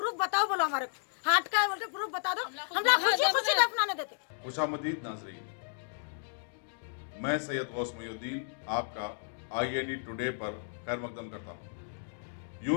बताओ, बोलो हमारे हार्ट का है, बोलते प्रूफ बता दो, हम लोग खुशी दफनाने देते। खुशामदीद नाज़रीन, मैं सैयद गौस मुहीउद्दीन आपका IND टुडे पर खैर मकदम करता हूँ।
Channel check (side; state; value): right; silent; digital silence